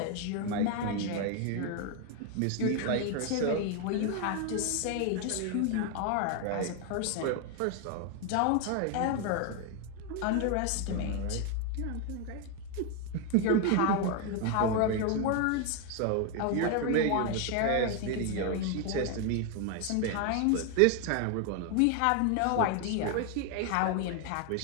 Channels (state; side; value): different; both; correlation 0.01